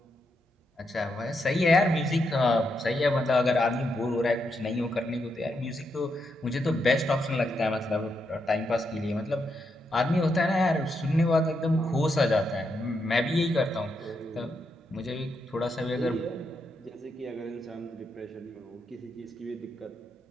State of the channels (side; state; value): both; normal; correlation 0.82